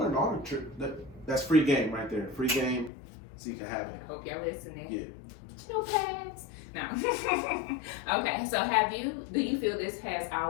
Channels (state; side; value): drops out; right; at 2.9 s